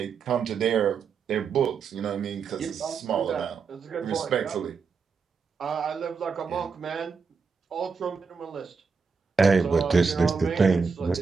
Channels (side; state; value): left; quieter; 5.3 dB